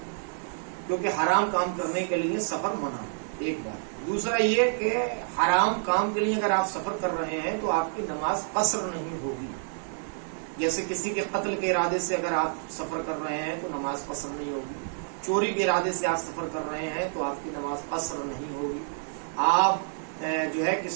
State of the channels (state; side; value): silent; left; digital silence